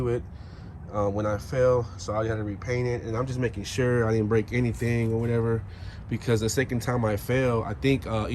it when I fell. So I had to repaint it. And I'm just making sure I didn't break anything or whatever. Because the second time I fell, I think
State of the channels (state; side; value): identical; both; correlation 1.00